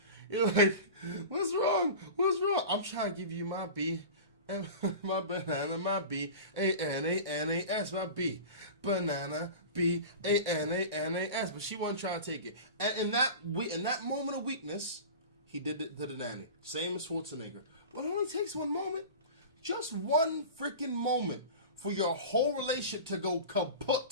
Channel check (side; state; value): both; inverted; correlation -0.33